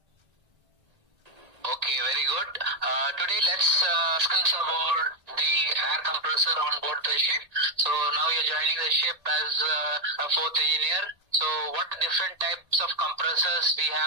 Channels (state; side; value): late; left; 1.8 ms